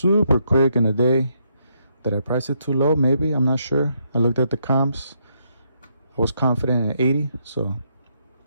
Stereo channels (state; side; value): inverted; both; correlation -0.76